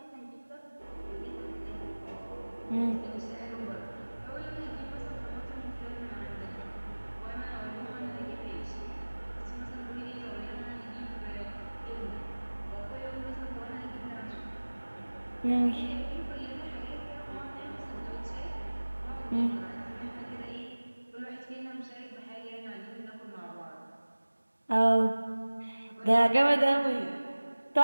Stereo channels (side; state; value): both; inverted; correlation -1.00